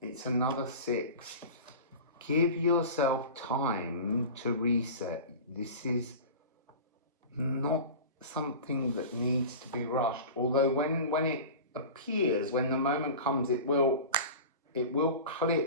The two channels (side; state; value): both; inverted; correlation -0.34